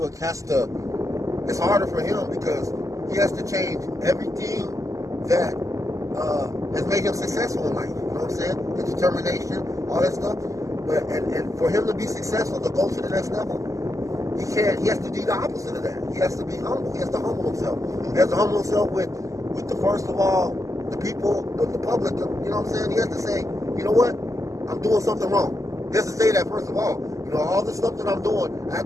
has to. It's harder for him because he has to change everything that has made him successful in life. You know what I'm saying? The determination, all that stuff. But and for him to be successful, to go to the next level, he has to do the opposite of that. He has to be humble. He has to humble himself. He has to humble himself with the first of all, the people, the public. You know what I'm saying? He has to say, you know what? I'm doing something wrong. He has to say that first of all. All the stuff that I'm doing, I have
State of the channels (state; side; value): late; left; 0.16 ms